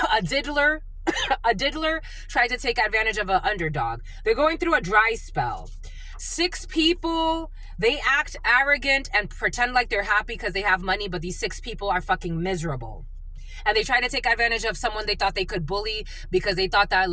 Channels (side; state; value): both; identical; correlation 1.00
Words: A diddler tried to take advantage of an underdog. They're going through a dry spell. 6 people, they act arrogant and pretend like they're happy because they have money, but these 6 people are fucking miserable. And they try to take advantage of someone they thought they could bully because they thought that